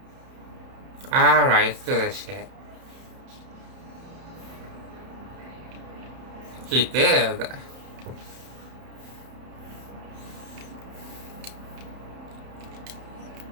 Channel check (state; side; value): late; left; 31 ms